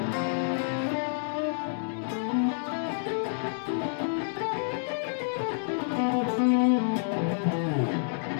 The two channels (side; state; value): right; silent; 58 dB below the other